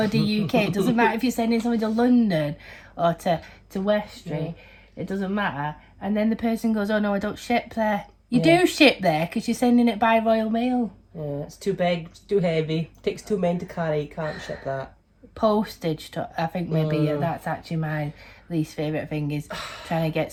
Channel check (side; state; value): both; identical; correlation 1.00